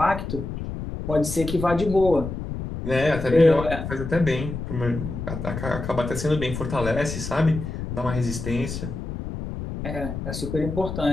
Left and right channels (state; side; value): noise; left; rumble, 6 dB below the sound